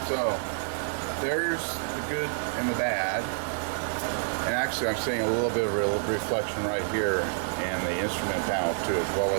so there's the good and the bad. And actually I'm seeing a little bit of reflection right here in the instrument panel too, as well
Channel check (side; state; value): left; silent; digital silence